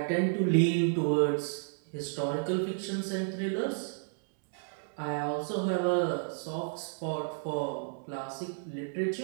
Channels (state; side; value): silent; left; digital silence